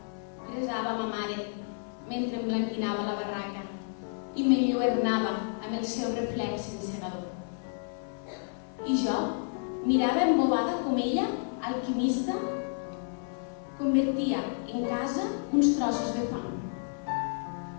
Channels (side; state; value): right; silent; 57 dB below the other